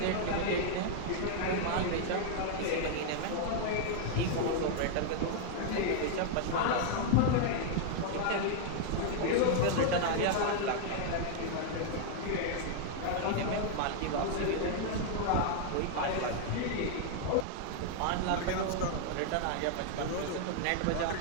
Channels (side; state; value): both; different; correlation 0.00